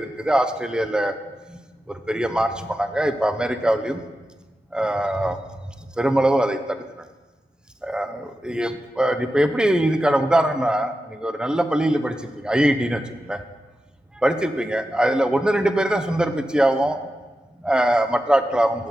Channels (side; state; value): both; normal; correlation 0.91